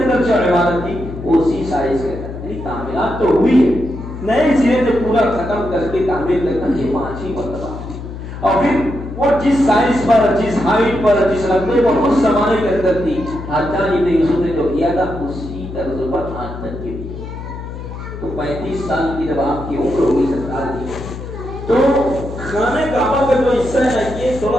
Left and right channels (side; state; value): left; noise; hum, 10 dB below the sound